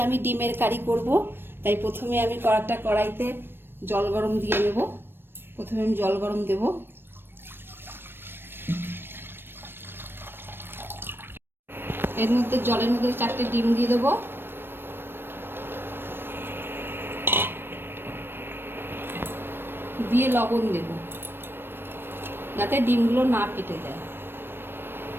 আমি ডিমের কারি করব, তাই প্রথমে আমি একটা কড়াইতে জল গরম দিয়ে নেব। প্রথমে আমি জল গরম দেব। এর মধ্যে জলের মধ্যে 4টে ডিম দিয়ে দেবো। দিয়ে লবণ দেব যাতে ডিমগুলো না ফেটে যায়।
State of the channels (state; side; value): late; left; 0.10 ms